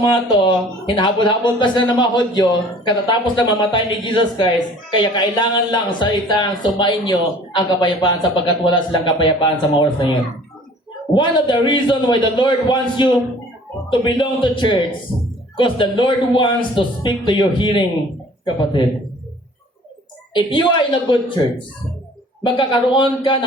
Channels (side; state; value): both; normal; correlation 0.50